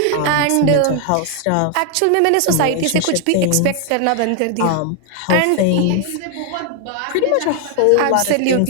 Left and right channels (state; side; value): different; both; correlation 0.00